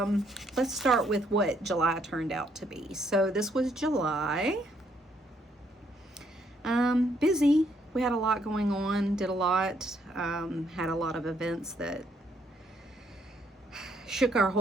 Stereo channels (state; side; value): normal; both; correlation 0.71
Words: start with what July turned out to be. So this was July. Busy. We had a lot going on, did a lot, had a lot of events that shook our